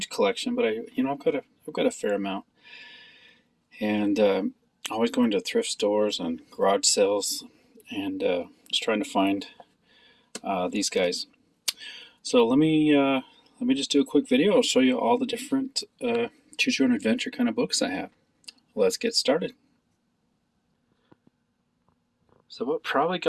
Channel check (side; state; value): both; identical; correlation 1.00